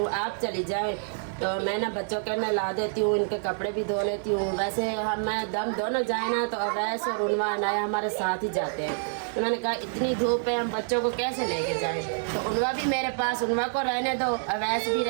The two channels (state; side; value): silent; left; digital silence